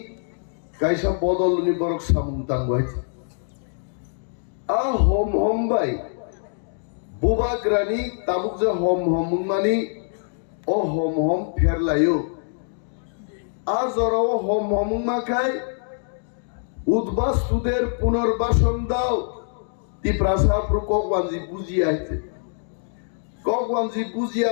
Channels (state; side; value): silent; right; digital silence